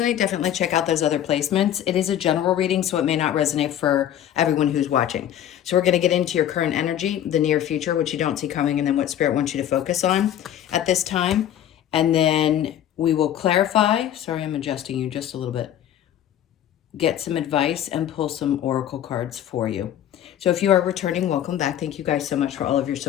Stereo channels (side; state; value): right; quieter; 10.9 dB